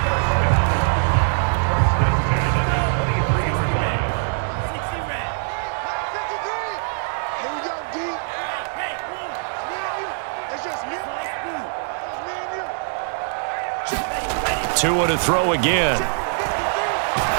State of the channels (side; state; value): left; silent; 64 dB below the other